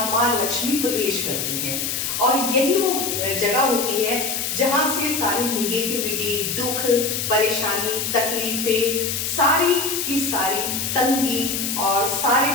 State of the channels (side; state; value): left; noise; hiss, 2 dB below the sound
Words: माँ लक्ष्मी प्रवेश करती हैं। और यही वो जगह होती है जहां से सारी निगेटिविटी, दुख, परेशानी, तकलीफें, सारी की सारी तंगी और सारी